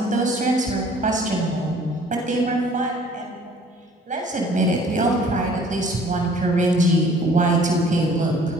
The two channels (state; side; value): normal; both; correlation 0.54